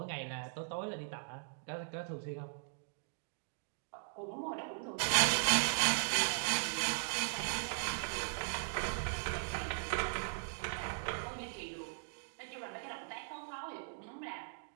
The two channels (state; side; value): silent; left; digital silence